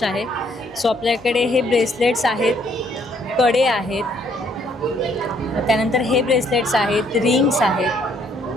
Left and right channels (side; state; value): both; normal; correlation 0.67